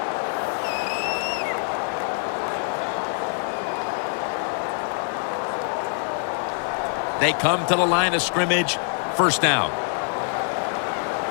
They come to the line of scrimmage. First down.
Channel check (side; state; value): right; silent; 62 dB below the other